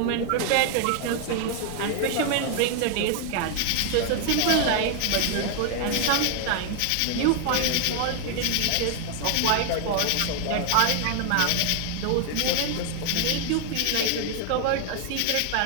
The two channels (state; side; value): different; both; correlation 0.00